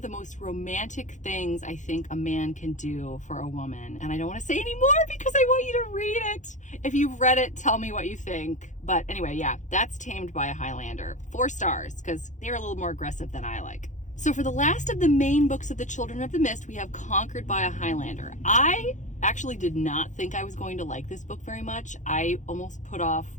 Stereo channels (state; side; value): late; right; 0.35 ms